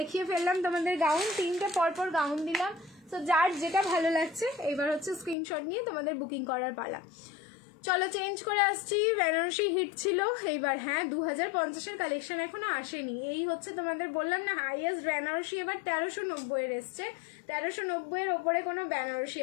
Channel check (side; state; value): right; drops out; at 5.4 s